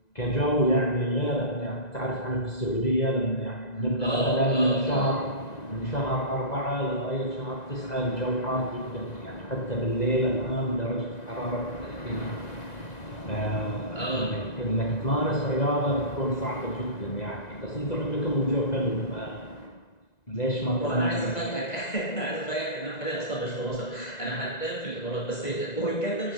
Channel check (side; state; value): right; late; 1.9 ms